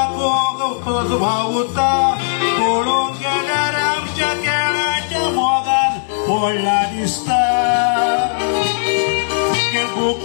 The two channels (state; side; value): silent; right; digital silence